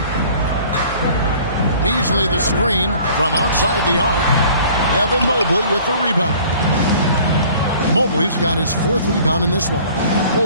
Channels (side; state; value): both; inverted; correlation -0.51